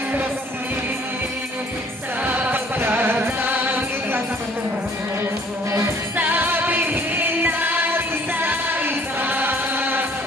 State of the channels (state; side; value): normal; both; correlation 0.57